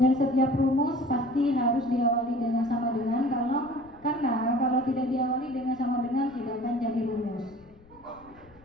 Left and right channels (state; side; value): noise; left; rumble, 27 dB below the sound